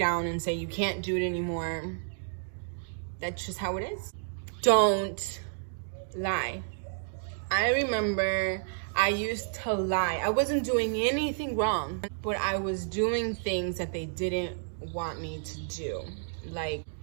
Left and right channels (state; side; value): silent; left; digital silence